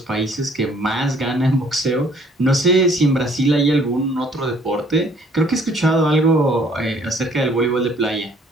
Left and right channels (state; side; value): normal; both; correlation 0.59